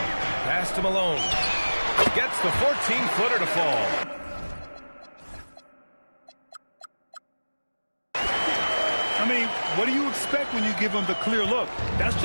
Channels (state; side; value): inverted; both; correlation -1.00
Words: Pass to Malone. Gets the 14-footer to fall. I mean, what do you expect when you give him the clear look? That's